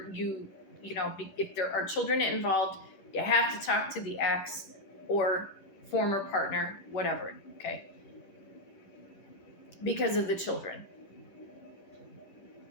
you know, if there are children involved, you have to talk to the ex or former partner, whatever, okay? Because of the children.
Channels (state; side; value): late; right; 10 ms